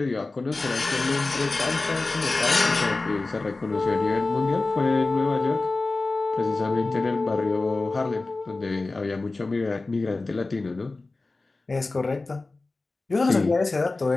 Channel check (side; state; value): right; quieter; 3.4 dB